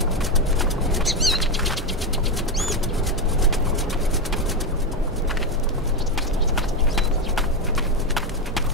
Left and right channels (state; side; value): normal; both; correlation 0.10